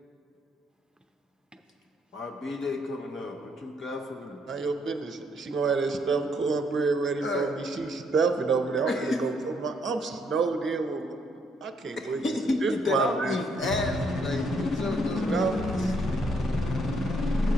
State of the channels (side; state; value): both; normal; correlation 0.71